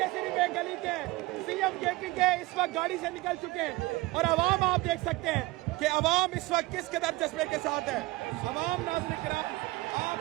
सिर्फ एक गली के सीएम केपी के इस वक्त गाड़ी से निकल चुके हैं। और अवाम आप देख सकते हैं कि अवाम इस वक्त किस कदर जज्बे के साथ है। अवाम नाज़रीन किराम आप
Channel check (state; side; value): quieter; left; 20.4 dB